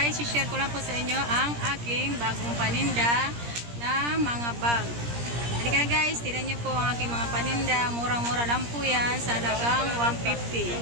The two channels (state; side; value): late; left; 17 ms